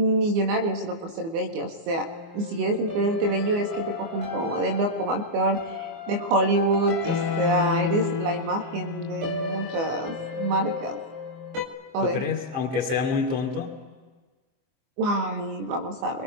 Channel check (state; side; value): late; left; 24 ms